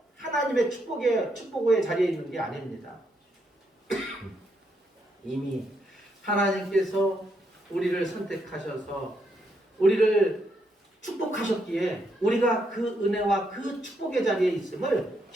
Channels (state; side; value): normal; both; correlation 0.77